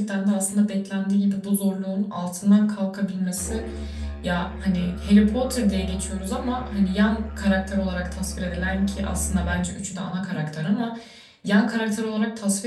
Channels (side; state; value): both; identical; correlation 1.00